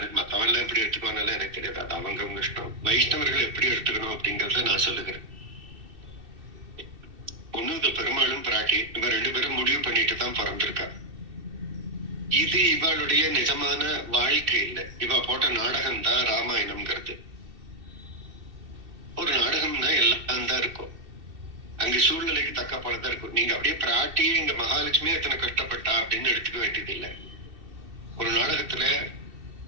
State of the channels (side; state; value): left; late; 2.7 ms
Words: மத்தவெல்லாம் எப்படி எடுத்துக்கோனாலும் எனக்கு தெரியாது. அது அவங்க இஷ்டம். வைஷ்ணவர்கள் எப்படி எடுத்துக்கணும் அப்படிங்கறத நான் சொல்லுகிறேன். ஒண்ணு இது பெரும்பாலும் பிராட்டி, இவ 2 பேரும் முடிவு பண்ணிட்டு தான் பிறந்திருக்கா. இது இவளுடைய நிஜமான வாழ்க்கை இல்லை. இவ போட்ட நாடகம் தான் ராமாயணம்ங்கிறது. ஒரு நாடகம்னா எல்லாம் தான் இருக்கும். அங்க சூழ்நிலைக்கு தக்க போலதான் இருக்கும். நீங்க அப்படியே பிராட்டியே இங்க மகாலட்சுமி எத்தனை கஷ்டப்பட்டா அப்படின்னு எடுத்துக்க வேண்டியது இல்லை. ஒரு நாடகத்துல